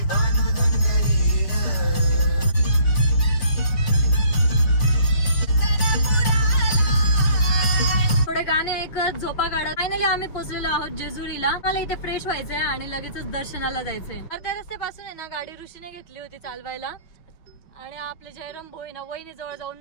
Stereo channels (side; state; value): right; late; 6.2 ms